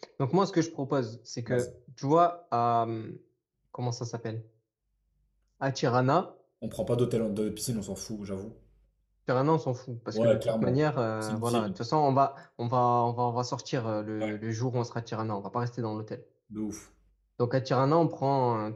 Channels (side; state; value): both; identical; correlation 1.00